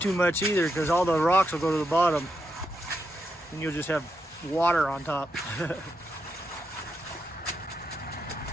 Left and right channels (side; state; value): both; normal; correlation 0.83